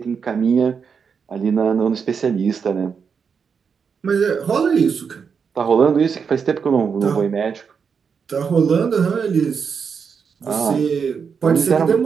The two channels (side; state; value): left; quieter; 6.2 dB